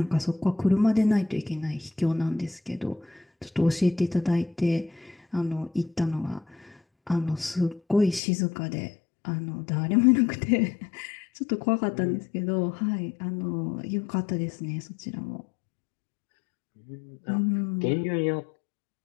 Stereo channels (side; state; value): right; drops out; at 8.2 s